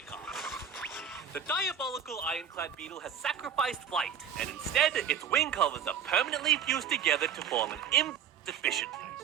car. The diabolical ironclad beetle has sacrificed flight, and instead, its wing covers are permanently fused together to form an efficiently.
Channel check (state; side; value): quieter; left; 7.8 dB